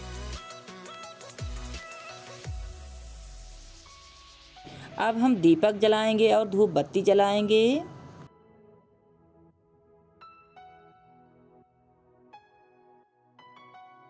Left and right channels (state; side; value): identical; both; correlation 1.00